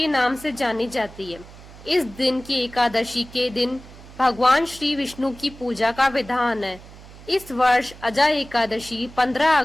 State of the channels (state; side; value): noise; right; hum, 19 dB below the sound